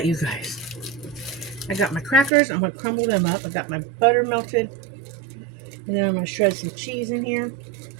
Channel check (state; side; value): drops out; left; at 2.3 s